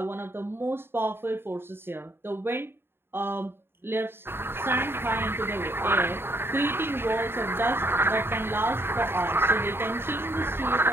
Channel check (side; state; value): left; late; 0.11 ms